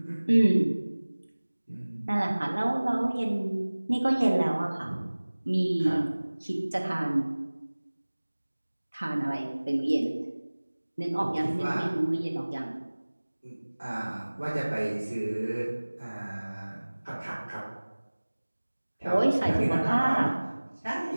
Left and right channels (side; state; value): both; inverted; correlation -1.00